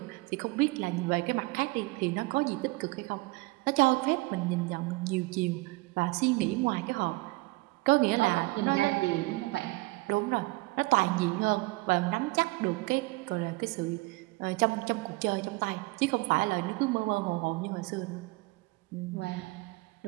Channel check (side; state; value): left; quieter; 23.5 dB